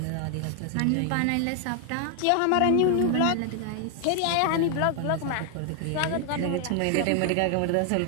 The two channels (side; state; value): both; different; correlation 0.00